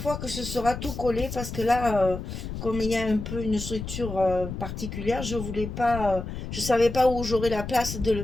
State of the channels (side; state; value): left; noise; rumble, 7 dB below the sound